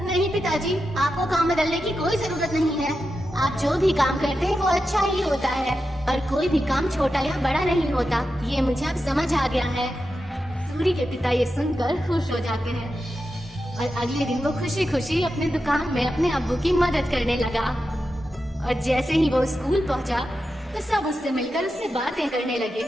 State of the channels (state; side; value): normal; both; correlation 0.90